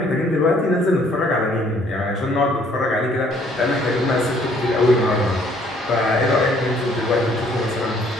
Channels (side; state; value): both; normal; correlation 0.62